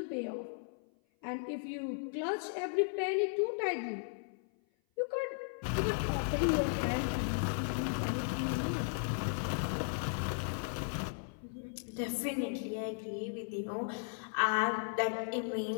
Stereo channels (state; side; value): silent; right; 54 dB below the other